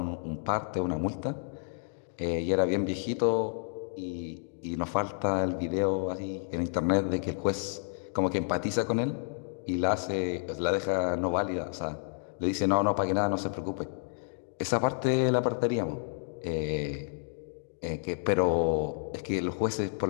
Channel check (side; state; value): right; silent; digital silence